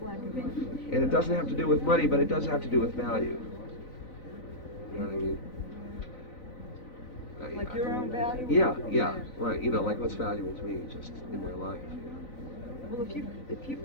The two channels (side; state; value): right; late; 3.5 ms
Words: and white. And it doesn't have to do with money, but it does have to do with value. You know what I mean? Like your own value? Yeah, right. You know, like what's valuable to me just in my life. You know? Well, if you